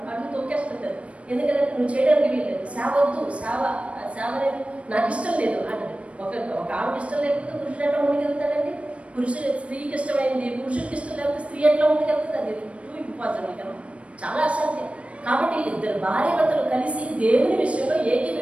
అడుగు తొక్కేస్తుంటారు. ఎందుకంటే నువ్వు చేయడానికి వీల్లేదు, సేవ అనేది నాకు ఇష్టం లేదు అంటే ఒక ఆమెకి ఇష్టం లేకపోతే పురుషుడు ఎట్లా ముందుకెళ్తాడండి? స్త్రీకి ఇష్టమైంది పురుషుడికి ఇష్టం లేకపోతే స్త్రీ ఎట్లా ముందుకెళ్తుంది? అది టూ ఇంపార్టెంట్ కదా, చాలా అసాధ్యం. కాబట్టి ఇద్దరు భార్య భర్తలు కలిసి దేవుని విషయంలో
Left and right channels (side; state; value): left; late; 0.062 ms